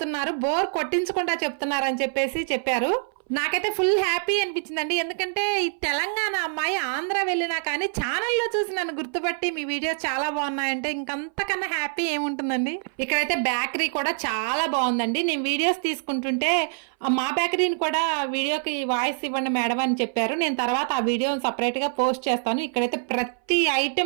బోర్ కొట్టించకుండా చెప్తున్నారు అని చెప్పారు. నాకైతే ఫుల్ హ్యాపీ అనిపించిందండి. ఎందుకంటే ఈ తెలంగాణ అమ్మాయి ఆంధ్ర వెళ్ళినా కానీ ఛానల్లో చూసి నన్ను గుర్తుపట్టి మీ వీడియోస్ చాలా బాగున్నాయంటే ఇంకంతకన్నా హ్యాపీ ఏముంటుందండి. ఇక్కడైతే బేకరీ కూడా చాలా బాగుందండి. నేను వీడియోస్ తీసుకుంటుంటే మా బేకరీని కూడా వీడియోకి వాయిస్ ఇవ్వండి మేడం అని చెప్పారు. నేను తర్వాత ఆ వీడియోని సపరేట్ గా పోస్ట్ చేస్తాను. ఇక్కడైతే ప్రతి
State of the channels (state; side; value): silent; left; 59 dB below the other